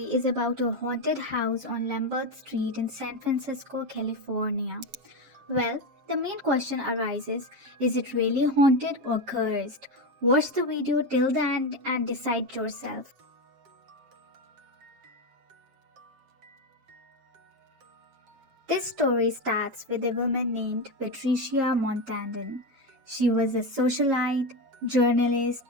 is about a haunted house on Lombard Street in San Francisco, California. Well, the main question arises, is it really haunted or cursed? Watch the video till the end and decide yourself. This story starts with a woman named Patricia Montandon. She was a socialite, journalist,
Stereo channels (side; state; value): left; late; 7.4 ms